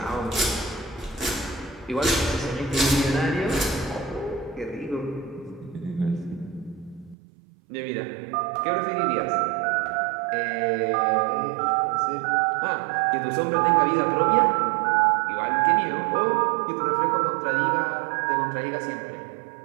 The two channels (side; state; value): left; drops out; at 7.2 s